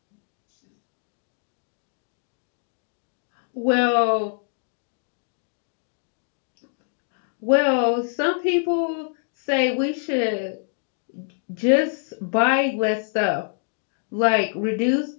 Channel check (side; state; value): right; silent; digital silence